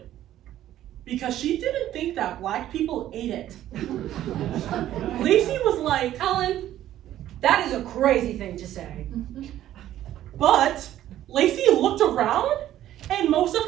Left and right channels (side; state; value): left; quieter; 12.7 dB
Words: because she didn't think that black people ate it. Lacey was like, Ellen, that is a crazy thing to say. but Lacey looked around and most of